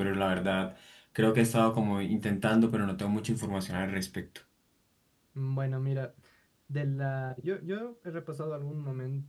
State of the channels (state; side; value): identical; both; correlation 1.00